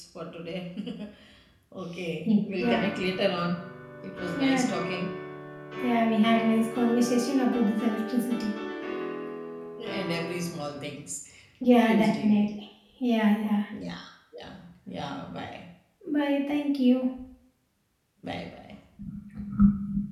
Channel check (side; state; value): both; identical; correlation 1.00